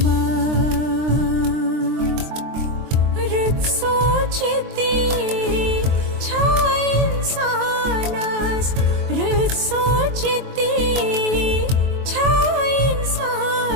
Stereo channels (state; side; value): late; left; 23 ms